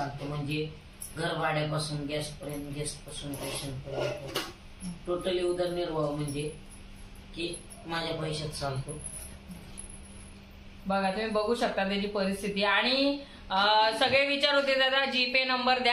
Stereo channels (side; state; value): both; identical; correlation 1.00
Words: म्हणजे घर भाड्यापासून गॅसपर्यंत, गॅसपासून पेशंटपर्यंत टोटली उदरनिर्वाह म्हणजे की माझ्या पैशात चालतो. बघा, तुम्ही बघू शकता त्याची परिस्थिती. आणि सगळे विचार होते, दादा जीपे नंबर